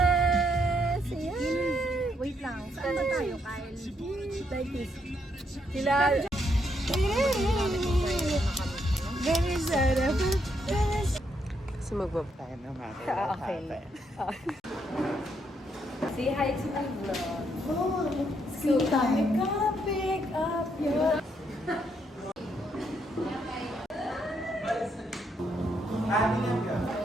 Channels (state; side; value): normal; both; correlation 0.76